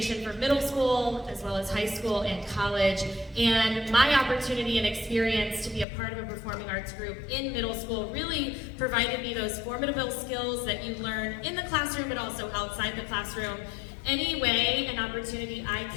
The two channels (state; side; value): drops out; right; at 5.9 s